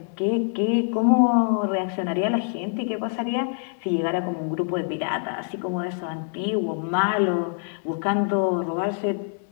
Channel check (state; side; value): silent; right; 62 dB below the other